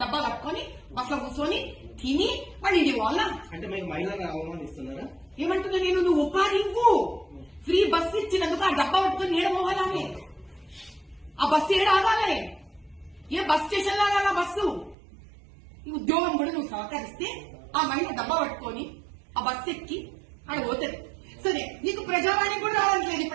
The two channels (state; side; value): drops out; left; at 15.0 s